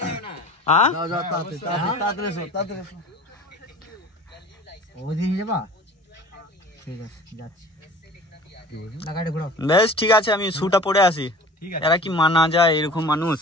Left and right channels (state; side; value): normal; both; correlation 0.43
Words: বেশ ঠিক আছে, আমি শুটা পরে আসি। এরা কি মানা যায় এরকম মানুষ?